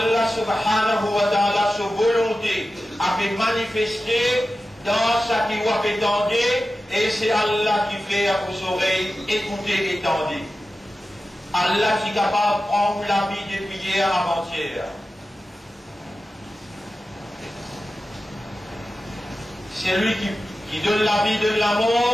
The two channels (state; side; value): normal; both; correlation 0.94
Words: subhanahu wa ta'ala, sa volonté, a fait manifester dans sa qui a fait tendre, et c'est Allah qui fait à vos oreilles écouter et tendre. Allah qui est capable de prendre la vie depuis hier avant-hier. C'est lui qui donne la vie, donne